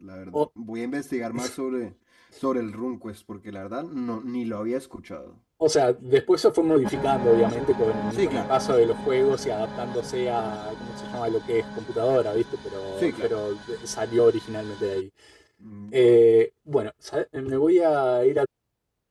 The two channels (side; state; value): both; identical; correlation 1.00